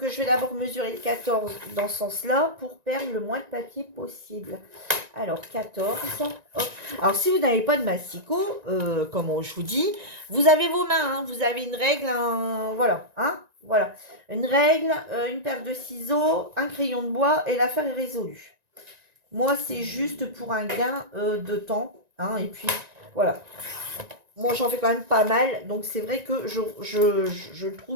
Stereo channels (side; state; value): left; late; 1.9 ms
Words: je vais d'abord mesurer le 14 dans ce sens-là pour perdre le moins de papier possible. Alors, 14. Hop. Alors, si vous n'avez pas de massicot, comme je vous dis, vous avez vos mains. Hein, vous avez une règle, voilà. Hein, voilà. Une règle, une paire de ciseaux, un crayon de bois et l'affaire est résolue. Moi, c'est juste pour un gain de temps. Hein, et puis, voilà. Moi, j'en fais quand même pas mal. Donc, c'est vrai que je